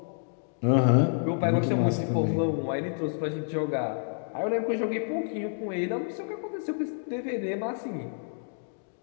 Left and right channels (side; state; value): right; silent; digital silence